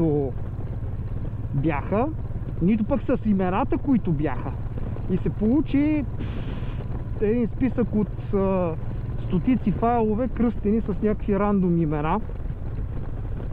бяха, нито пък с имената, които бяха. И се получи един списък от стотици файлове, кръстени с някакви рандом имена.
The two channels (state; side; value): identical; both; correlation 1.00